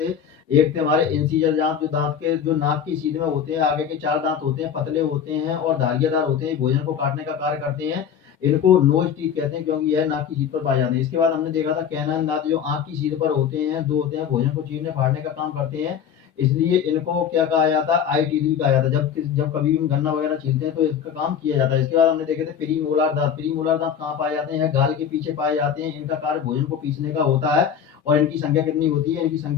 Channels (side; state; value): right; quieter; 8.2 dB